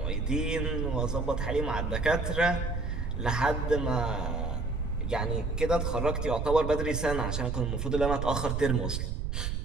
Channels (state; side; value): noise; right; rumble, 2 dB below the sound